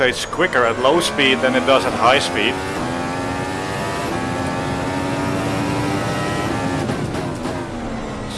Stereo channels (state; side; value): identical; both; correlation 1.00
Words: quicker at low speed than it does at high speed.